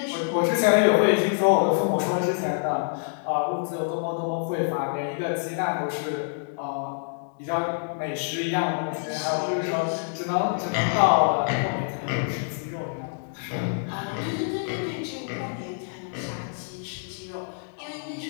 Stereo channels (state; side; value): silent; right; digital silence